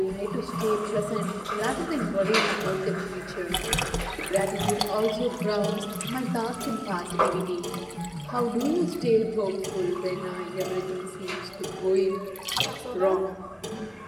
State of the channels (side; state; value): both; identical; correlation 1.00